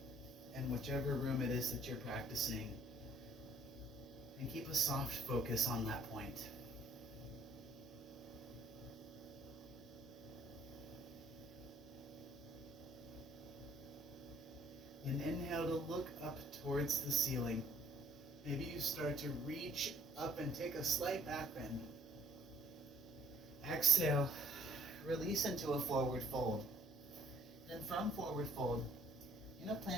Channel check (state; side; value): normal; both; correlation 0.59